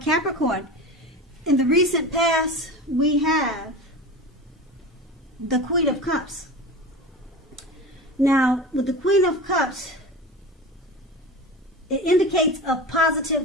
in the recent past, we have the Queen of Cups. Now, with the Queen of Cups, it indicates a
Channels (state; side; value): normal; both; correlation 0.31